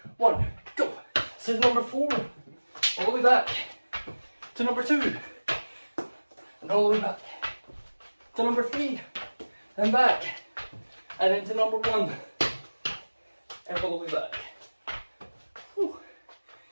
1, go. So number 4, all the way back. To number 2, and all the way back. to number 3, and back, and then to number 1, and all the way back. Whew.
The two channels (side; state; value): both; inverted; correlation -1.00